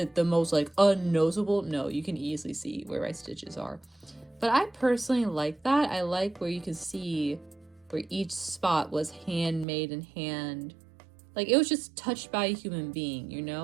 the most like unnoticeable? No, you can easily see where my stitches are. But I personally like that. I like where you can see where each spot was handmade and hand. Like it was just touched by a human being, you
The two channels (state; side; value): drops out; left; at 9.7 s